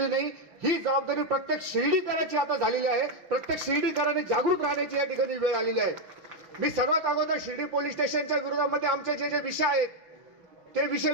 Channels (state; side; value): late; left; 5.8 ms